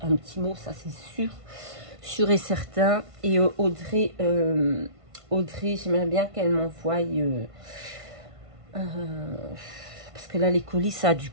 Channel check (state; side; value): late; left; 1.5 ms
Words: mot, ça c'est sûr et certain. Et Audrey, j'aimerais bien qu'elle m'envoie, parce que là les colis, ça a dû